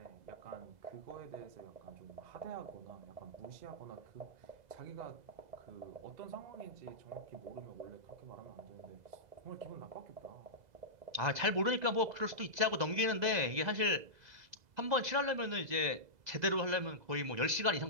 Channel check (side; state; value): left; late; 2.0 ms